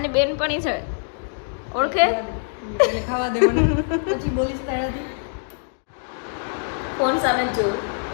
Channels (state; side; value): silent; right; digital silence